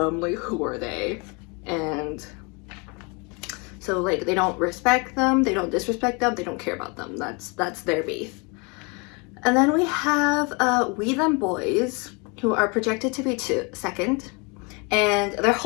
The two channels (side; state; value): right; quieter; 30.8 dB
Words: like who are they? And so like they don't respect them, they don't disrespect them, they don't care about them. That's their beef. And then we have We Them Boys, who are projected to be second, and their